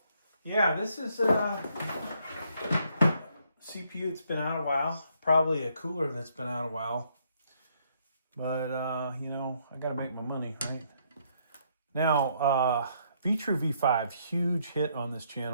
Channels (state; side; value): inverted; both; correlation -0.71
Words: Yeah, this is a CPU that's been out a while, probably a cooler that's been out a while. But, you know, I got to make my money, right? Now, Vetroo V5, huge hit on this